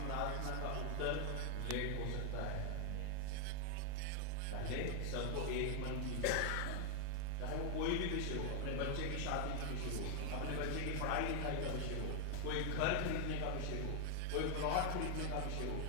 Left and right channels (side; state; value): both; different; correlation 0.00